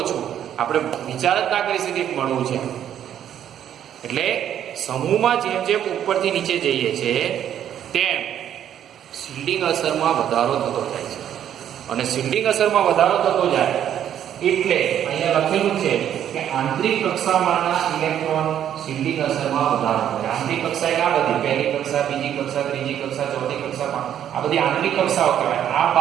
ઓછું. આપણે વિચાર જ ના કરી શકીએ મળવું છે. એટલે સમૂહમાં જેમ જેમ ઉપરથી નીચે જઈએ છે તેમ શિલ્ડિંગ અસરમાં વધારો થતો જાય છે. અને શિલ્ડિંગ અસરમાં વધારો થતો જાય એટલે અહીંયા લખેલું છે કે આંતરિક કક્ષામાંના ઇલેક્ટ્રોન શિલ્ડિંગ અસરમાં વધારો થાય. આંતરિક કક્ષા એટલે આ બધી પહેલી કક્ષા, બીજી કક્ષા, ત્રીજી કક્ષા, ચોથી કક્ષા, આ બધી આંતરિક કક્ષાઓ કહેવાય. આ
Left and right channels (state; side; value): quieter; left; 10.2 dB